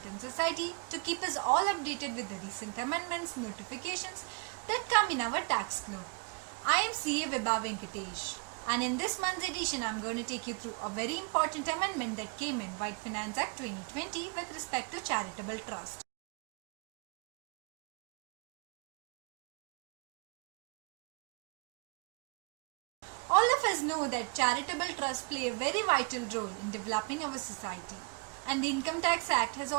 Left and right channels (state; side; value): quieter; left; 35.2 dB